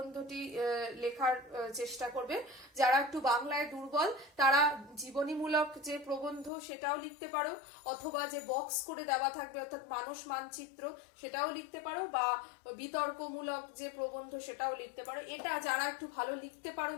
লেখার চেষ্টা করবে। যারা একটু বাংলায় দুর্বল তারা জীবনীমূলক যে প্রবন্ধ সেটাও লিখতে পারো, অথবা যে বক্স করে দেওয়া থাকবে অর্থাৎ মানস মানচিত্র সেটাও লিখতে পারো, বা বিতর্কমূলক যে প্রবন্ধ সেটাও লিখতে পারো। এটা যারা একটু ভালো লিখতে পারো,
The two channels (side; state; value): right; drops out; at 6.5 s